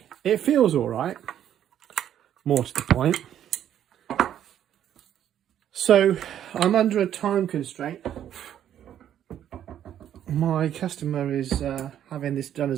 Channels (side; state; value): left; quieter; 10.5 dB